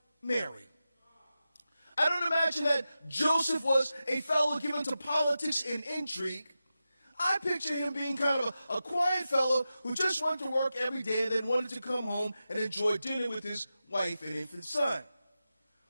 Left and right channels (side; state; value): both; inverted; correlation -0.92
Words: Mary. I don't imagine that Joseph was a fellow given to politics and intrigue. I picture him being kind of a quiet fellow who just went to work every day and then wanted to come home and enjoy dinner with his wife and infant son.